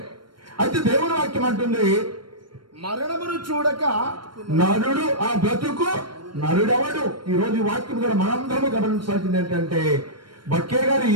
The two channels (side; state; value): left; late; 0.72 ms